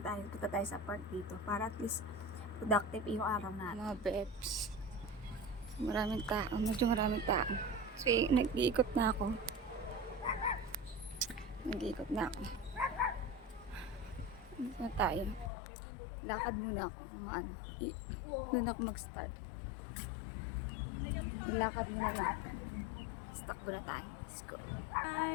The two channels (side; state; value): right; drops out; at 15.5 s